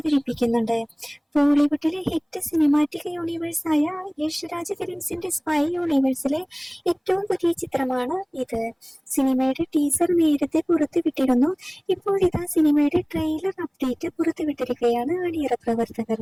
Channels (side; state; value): both; identical; correlation 1.00